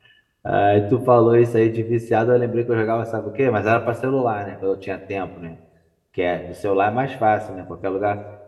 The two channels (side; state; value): both; identical; correlation 1.00